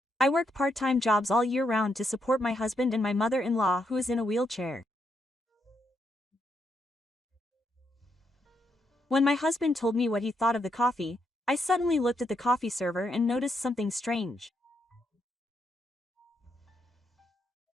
I work part-time jobs all year round to support my husband and my mother-in-law who is in a wheelchair. When my husband told me what he thought of the coffee, I suddenly looked at the coffee server and noticed something strange.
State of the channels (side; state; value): both; normal; correlation 0.79